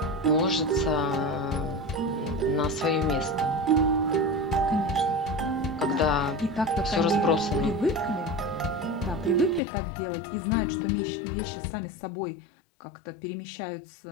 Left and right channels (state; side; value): drops out; right; at 9.6 s